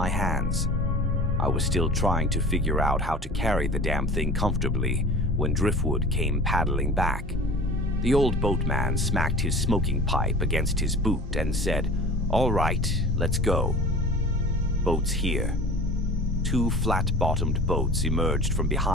hands. I was still trying to figure out how to carry the damn thing comfortably when Driftwood came paddling back. The old boatman smacked his smoking pipe against his boot and said, "All right, let's go." Boats here. Two flat-bottomed boats emerged from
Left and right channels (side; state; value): both; normal; correlation 0.36